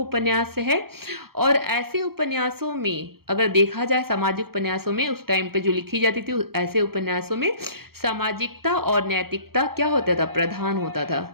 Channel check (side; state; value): left; late; 0.94 ms